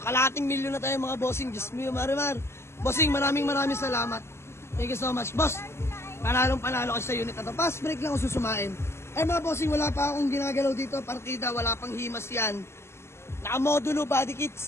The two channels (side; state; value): right; late; 0.13 ms